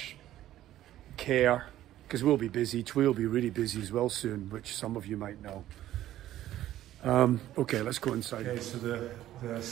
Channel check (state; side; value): quieter; left; 13.4 dB